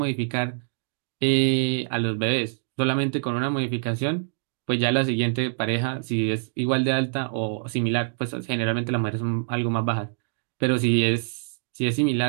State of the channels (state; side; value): silent; left; digital silence